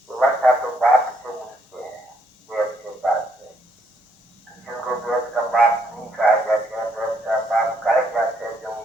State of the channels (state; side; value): normal; both; correlation 0.72